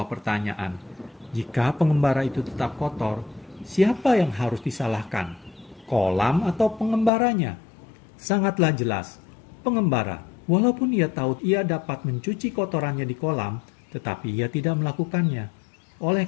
pertanyaan. Jika pengembara itu tetap kotor, siapa yang harus disalahkan? Kolam atau pengembaranya? Sangatlah jelas, pengembara. Walaupun ia tahu ia dapat mencuci kotorannya di kolam, tetapi ia tidak melakukannya. Oleh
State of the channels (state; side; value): drops out; right; at 7.1 s